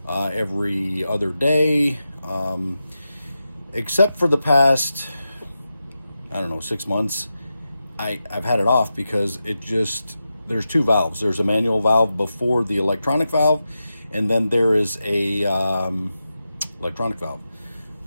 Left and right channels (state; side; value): inverted; both; correlation -0.90